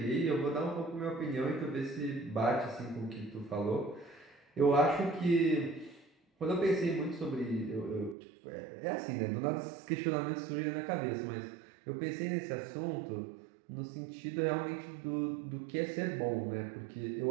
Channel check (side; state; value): left; drops out; at 8.2 s